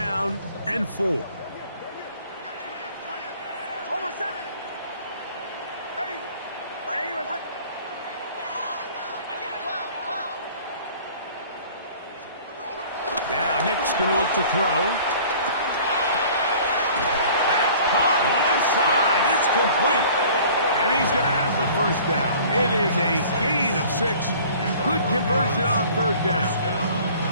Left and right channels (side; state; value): both; inverted; correlation -0.49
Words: and 4. Hold on, son. Ready. Now Nick's going to look to throw. That's caught left side. It's complete. And he's going to have the first down. It is a gain of 6. Good conversion on 3rd down.